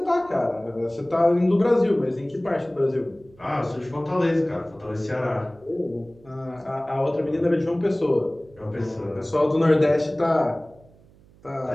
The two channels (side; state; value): right; noise; hum, 27 dB below the sound